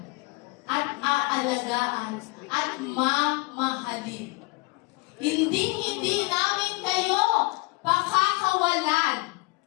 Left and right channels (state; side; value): quieter; right; 26.7 dB